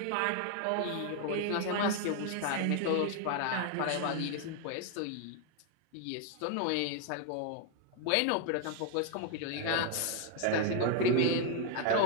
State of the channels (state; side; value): different; both; correlation 0.00